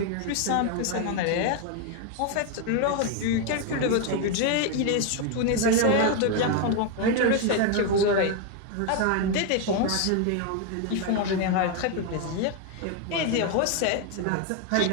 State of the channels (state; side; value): different; both; correlation 0.01